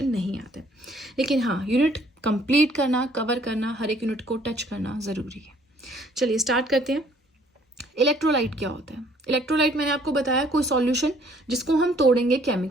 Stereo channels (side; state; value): both; normal; correlation 0.61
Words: नहीं आते, लेकिन हाँ यूनिट कंप्लीट करना, कवर करना, हर एक यूनिट को टच करना जरूरी है. चलिए स्टार्ट करते हैं. इलेक्ट्रोलाइट क्या होता है. इलेक्ट्रोलाइट मैंने आपको बताया कोई सॉल्यूशन जिसको हम तोड़ेंगे